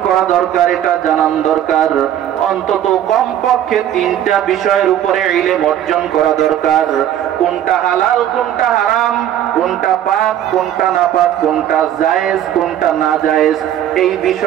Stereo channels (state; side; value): quieter; left; 11.1 dB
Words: করা দরকার, এটা জানান দরকার। অন্তত কমপক্ষে 3টা বিষয়ের উপরে ইলম অর্জন করা দরকার। কোনটা হালাল, কোনটা হারাম, কোনটা পাক, কোনটা নাপাক, কোনটা জায়েজ, কোনটা না জায়েজ, এই